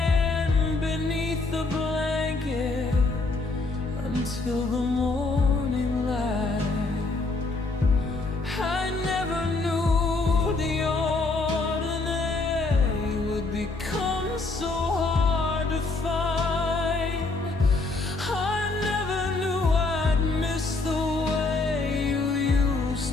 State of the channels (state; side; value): quieter; right; 3.5 dB